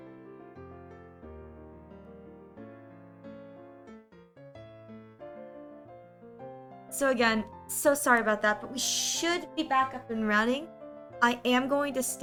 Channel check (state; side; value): identical; both; correlation 1.00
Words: So again, so sorry about that, but we should be back up and running. I am going to